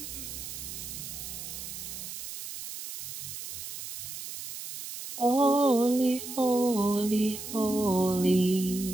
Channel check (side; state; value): right; noise; hiss, 9 dB below the sound